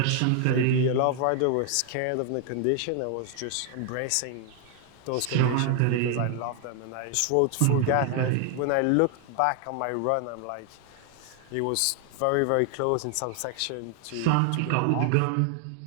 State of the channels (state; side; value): different; both; correlation 0.00